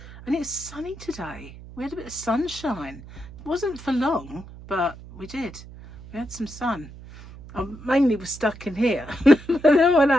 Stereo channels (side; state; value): right; noise; hum, 17 dB below the sound